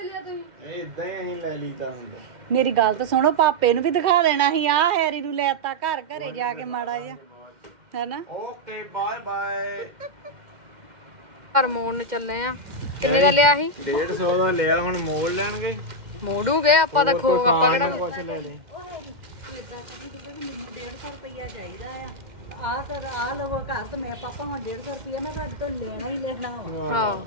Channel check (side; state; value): left; late; 2.1 ms